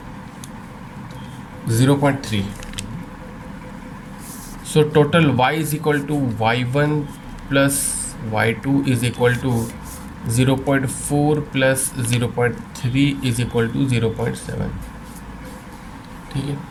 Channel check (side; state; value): both; identical; correlation 1.00